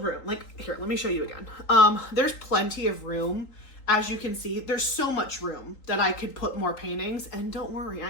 Like here, let me show you again. There's plenty of room. As you can see, there's so much room that I could put more paintings, and don't worry,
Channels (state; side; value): late; right; 3.8 ms